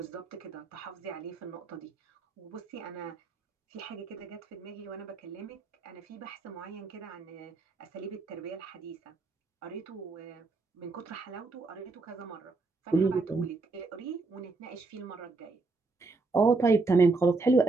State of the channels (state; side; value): quieter; left; 3.7 dB